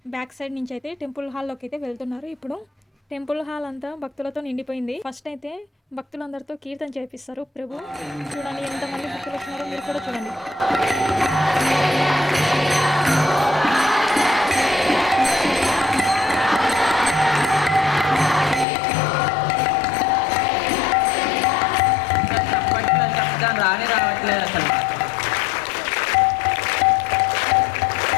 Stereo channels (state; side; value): drops out; right; at 18.7 s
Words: బ్యాక్ సైడ్ నుంచి అయితే టెంపుల్ హాల్లోకి అయితే వెళ్తున్నారు. ఇప్పుడు టెంపుల్ హాల్ అంతా భక్తులతో నిండిపోయింది. ఫస్ట్ అయితే భక్తులందరితో కీర్తన చేపిస్తారు ప్రభు. చూడండి ఎంతమంది భక్తులు వచ్చినారో మీరు కూడా చూడండి. రానే రావట్లేదు అసలు.